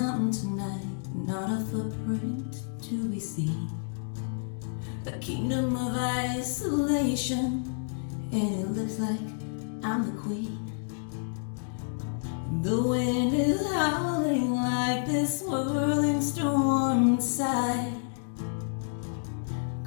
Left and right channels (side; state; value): right; silent; digital silence